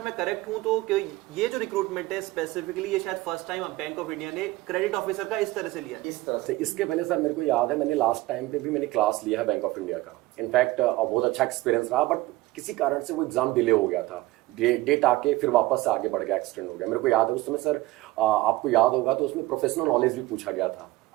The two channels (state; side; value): quieter; left; 18.9 dB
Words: मैं करेक्ट हूं तो ये जो रिक्रूटमेंट है स्पेसिफिकली ये शायद first time bank of India ने क्रेडिट ऑफिसर का इस तरह से लिया। इस तरह से इसके पहले सर मेरे को याद है, मैंने लास्ट टाइम पे भी मैंने क्लास लिया है बैंक ऑफ इंडिया का, इनफैक्ट बहुत अच्छा एक्सपीरियंस रहा, बट किसी कारण से वो एग्जाम डिले हो गया था, डेट आके फिर वापस से आगे बढ़ गया, एक्सटेंड हो गया। मेरे को याद है उस समय सर, आपको याद होगा तो उसमें प्रोफेशनल नॉलेज भी पूछा गया था,